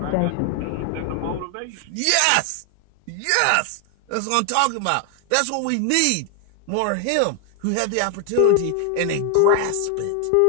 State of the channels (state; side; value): different; both; correlation 0.00